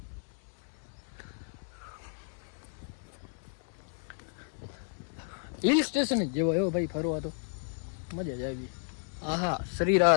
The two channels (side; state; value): right; silent; 56 dB below the other